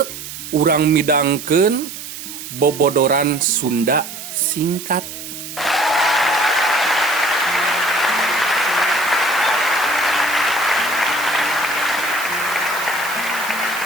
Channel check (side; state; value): right; noise; hiss, 10 dB below the sound